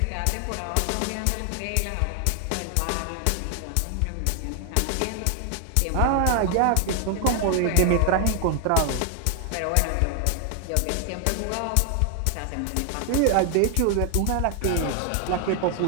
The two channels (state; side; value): different; both; correlation 0.00